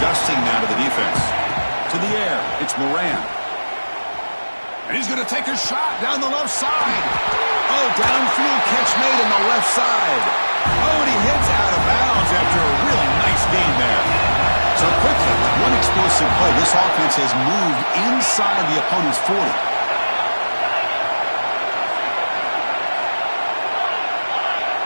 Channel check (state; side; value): inverted; both; correlation -1.00